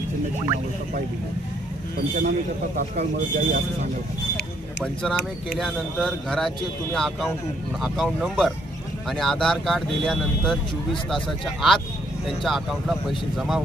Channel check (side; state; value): both; normal; correlation 0.70